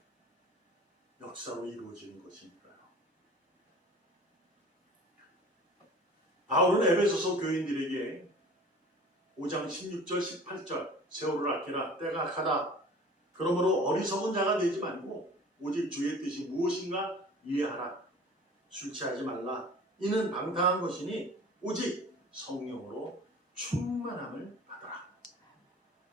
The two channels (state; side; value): normal; both; correlation 0.44